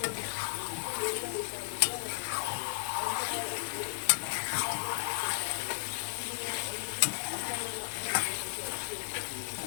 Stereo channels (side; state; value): right; silent; digital silence